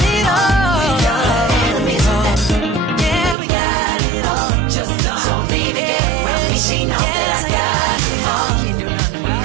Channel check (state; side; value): drops out; left; at 3.4 s